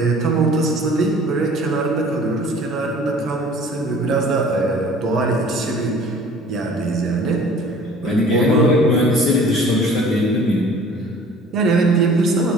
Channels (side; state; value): both; normal; correlation 0.49